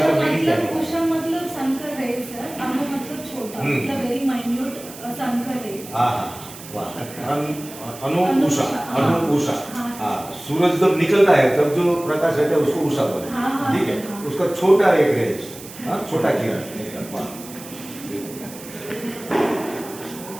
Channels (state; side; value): noise; right; hiss, 15 dB below the sound